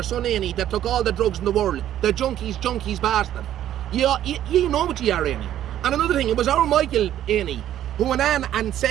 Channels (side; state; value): left; quieter; 11.7 dB